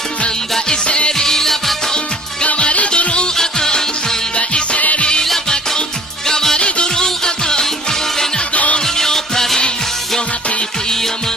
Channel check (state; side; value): normal; both; correlation 0.50